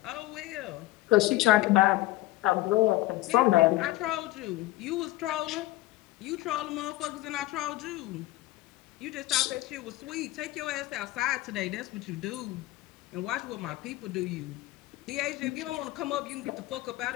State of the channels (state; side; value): quieter; right; 17.6 dB